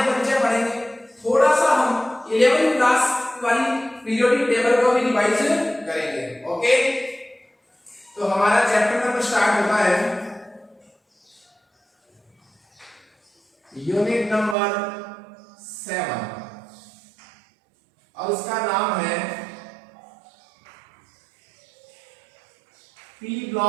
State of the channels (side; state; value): left; drops out; at 14.6 s